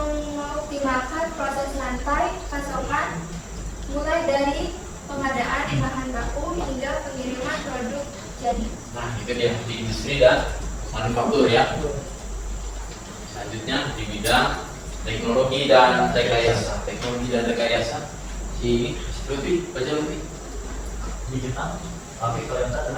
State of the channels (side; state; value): both; identical; correlation 1.00